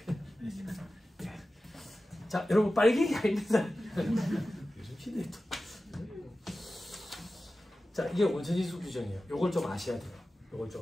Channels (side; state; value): both; normal; correlation 0.95